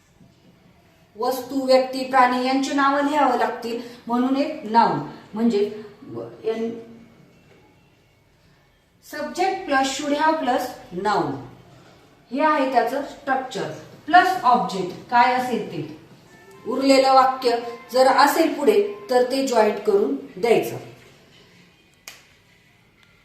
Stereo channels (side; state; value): both; identical; correlation 1.00